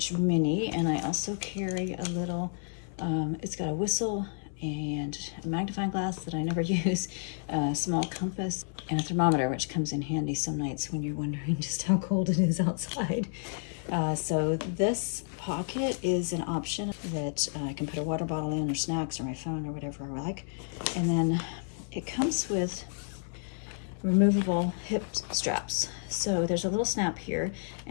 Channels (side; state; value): right; silent; 57 dB below the other